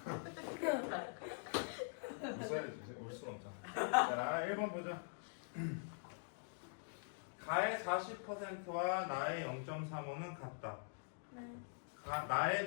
웃어야지. 울 수는 없잖아. 자, 1번 보자. 가의 40%와 나의 0.35는 같다. 네. 나에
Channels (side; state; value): right; silent; digital silence